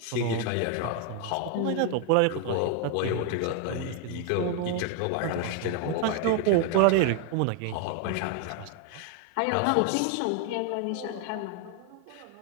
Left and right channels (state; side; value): different; both; correlation 0.01